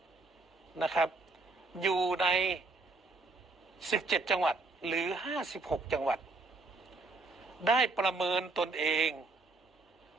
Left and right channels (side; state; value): left; quieter; 3.4 dB